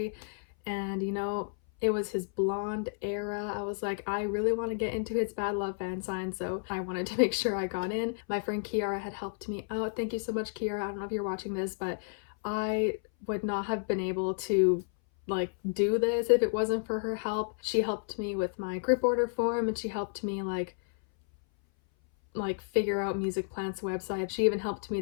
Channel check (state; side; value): silent; right; 57 dB below the other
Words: And, you know, it was his blonde era. I was like, I really want to get into his Bad Love Fansign, so I wanted to make sure I got in. My friend Kiara had helped me out. Thank you so much, Kiara. I don't know if you're watching this, but I would not have been able to like do this if it wasn't for her help. She helped me with my group order form, and she helped me like figure out Music Plant's website. She even helped me